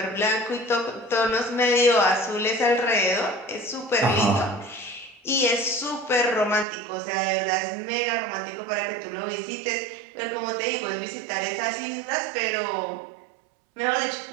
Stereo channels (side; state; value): left; drops out; at 6.7 s